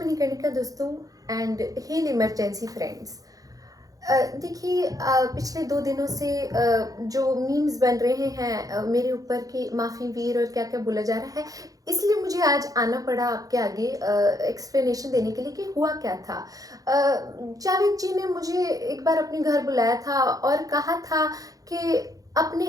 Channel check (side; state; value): left; late; 0.17 ms